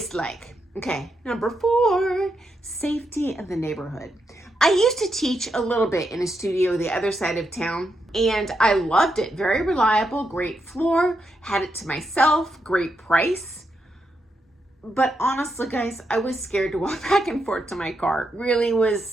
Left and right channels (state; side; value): normal; both; correlation 0.83